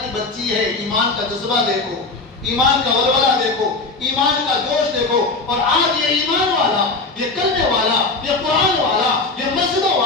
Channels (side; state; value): right; quieter; 3.6 dB